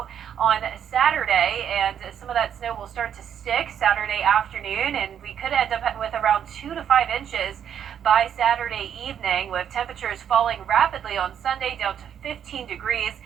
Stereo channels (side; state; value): left; quieter; 8.9 dB